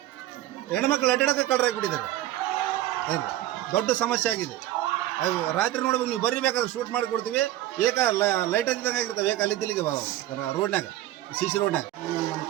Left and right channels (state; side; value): quieter; left; 14.3 dB